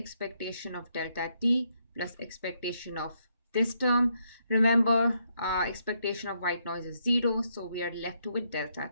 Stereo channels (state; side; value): inverted; both; correlation -0.76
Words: of delta t plus expectation of this term. Remember, expectation of white noise is 0, so we are left with delta